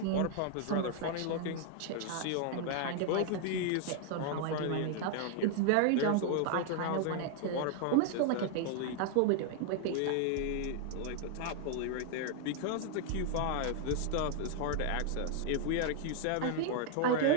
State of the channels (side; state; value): both; different; correlation 0.00